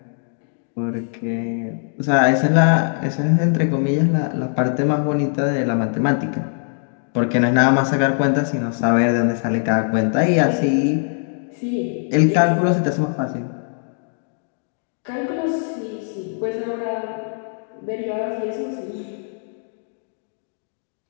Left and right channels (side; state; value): right; silent; digital silence